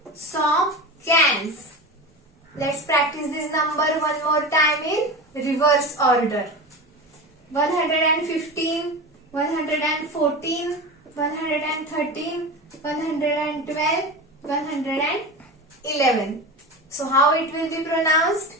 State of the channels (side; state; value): both; normal; correlation 0.27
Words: canz. Let's practice this number one more time in reverse order. 115, 114, 113, 112, 111. So how it will be pronounced?